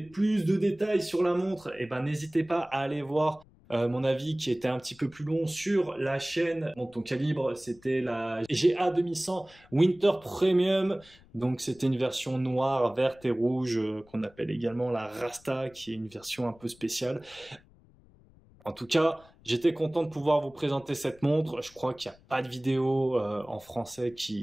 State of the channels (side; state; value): left; noise; rumble, 27 dB below the sound